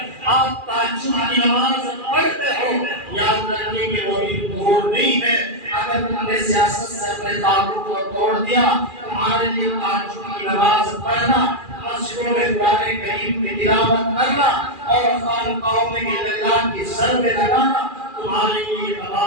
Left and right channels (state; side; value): late; left; 2.4 ms